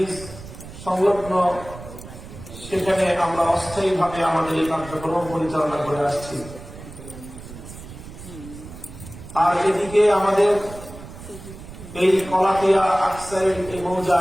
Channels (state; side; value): noise; right; rumble, 14 dB below the sound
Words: সংলগ্ন সেখানে আমরা অস্থায়ীভাবে আমাদের এই কার্যক্রম পরিচালনা করে আসছি। আর এদিকে আমাদের এই কলাতিয়া আকসাইড এই